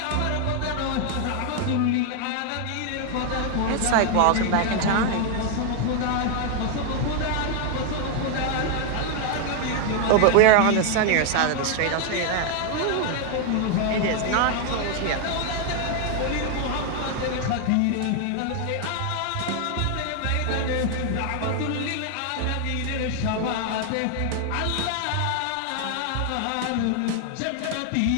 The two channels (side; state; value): both; different; correlation 0.00